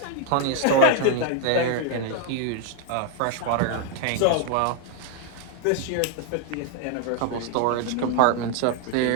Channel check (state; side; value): different; both; correlation 0.01